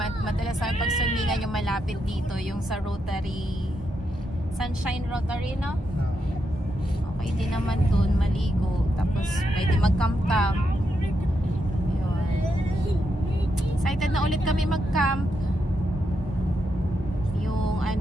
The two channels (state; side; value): normal; both; correlation 0.83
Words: madalas sa pag-swimingan yung malapit dito, yung sa Rotary, Sunshine Rotary, no? Okay din naman dun, maligo. Tapos pwede mag-camp-camp. Yun. Excited na ulit kami mag-camp. Yung